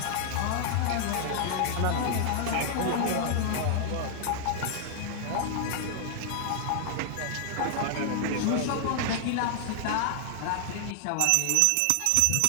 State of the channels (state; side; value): different; both; correlation 0.00